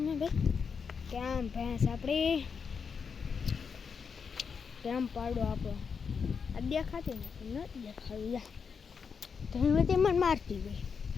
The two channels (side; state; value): right; quieter; 6.0 dB